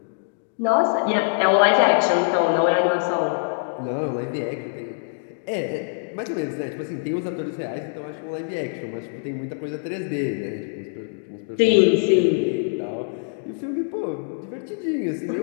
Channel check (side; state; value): right; silent; digital silence